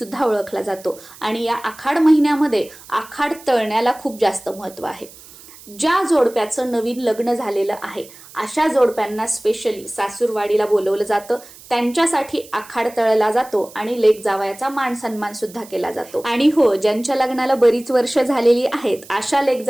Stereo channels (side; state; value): right; noise; hiss, 20 dB below the sound